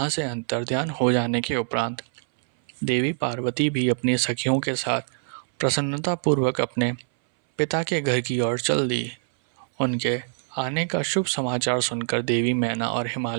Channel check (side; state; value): left; silent; 61 dB below the other